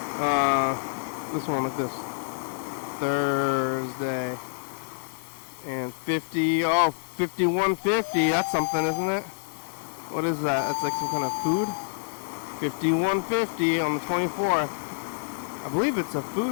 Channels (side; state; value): right; silent; digital silence